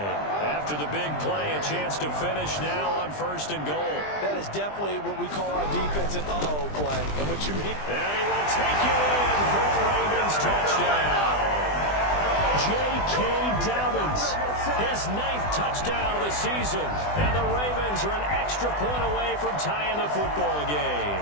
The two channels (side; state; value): right; late; 20 ms